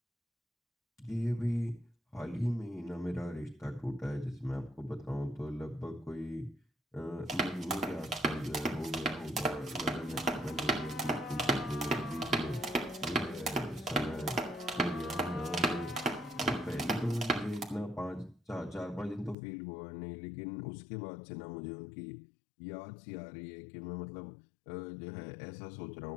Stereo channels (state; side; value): drops out; right; at 19.4 s